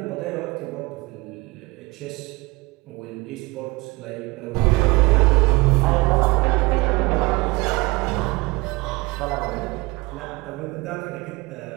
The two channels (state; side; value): quieter; left; 23.7 dB